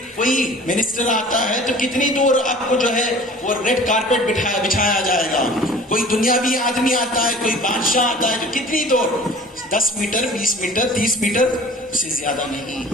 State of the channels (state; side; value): normal; both; correlation 0.45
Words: کوئی منسٹر آتا ہے تو کتنی دور آپ کو جو ہے وہ ریڈ کارپیٹ بچھایا جائے گا، کوئی دنیاوی آدمی آتا ہے، کوئی بادشاہ آتا ہے تو کتنی دور، 10 میٹر 20 میٹر 30 میٹر سے زیادہ نہیں۔